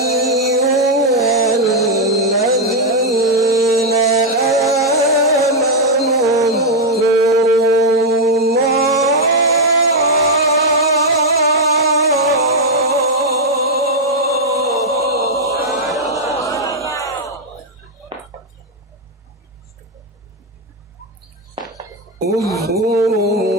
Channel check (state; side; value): normal; both; correlation 0.00